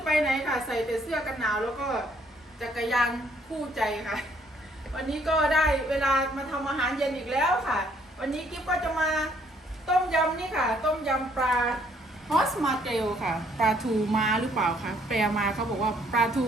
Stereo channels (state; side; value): normal; both; correlation 0.65